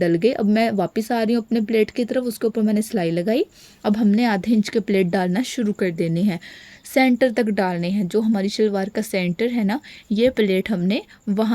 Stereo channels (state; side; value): identical; both; correlation 1.00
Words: गए। अब मैं वापस आ रही हूँ अपने प्लेट की तरफ, उसके ऊपर मैंने सिलाई लगाई। अब हमने आधे इंच के प्लेट डालना शुरू कर देने हैं, सेंटर तक डालने हैं। जो हमारी शलवार का सेंटर है ना, ये प्लेट हमने